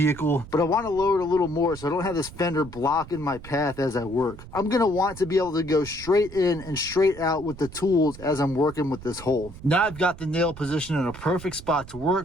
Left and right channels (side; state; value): right; noise; rumble, 15 dB below the sound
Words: but I want to lower it a little more so I don't have this fender blocking my path as I work. I'm going to want to be able to go straight in and straight out with the tools as I'm working with this hole. Now I've got the nail positioned in a perfect spot to